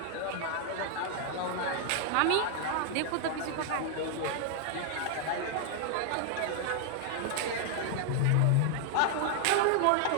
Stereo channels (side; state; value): both; different; correlation 0.00